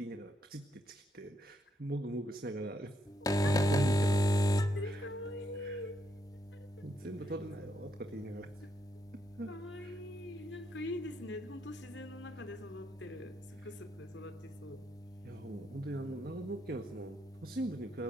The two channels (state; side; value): normal; both; correlation 0.78